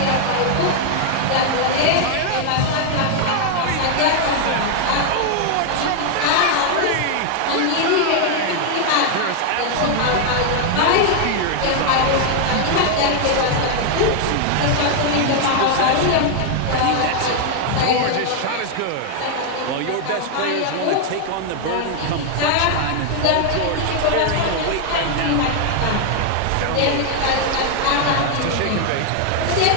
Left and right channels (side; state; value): both; different; correlation 0.00